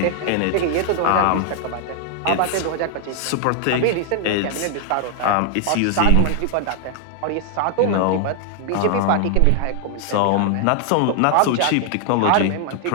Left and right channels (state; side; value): different; both; correlation 0.00